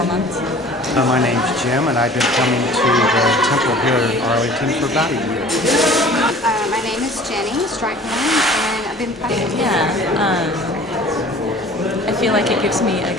months. My name's Jim, and I've been coming to the temple here in Arlington for about a year. My name is Jenny Strighorn, and I've been practicing. I feel like it gives me a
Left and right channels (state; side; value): normal; both; correlation 0.46